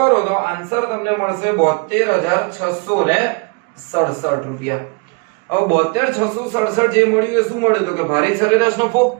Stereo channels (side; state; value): left; quieter; 33.4 dB